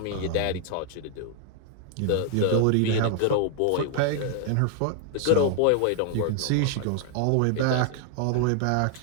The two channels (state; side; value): different; both; correlation 0.00